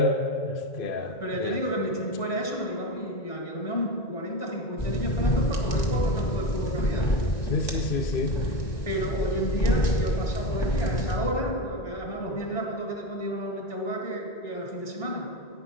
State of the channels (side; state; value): right; late; 1.2 ms